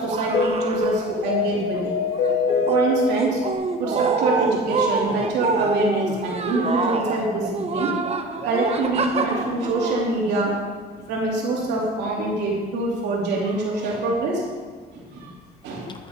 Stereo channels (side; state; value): both; normal; correlation 0.35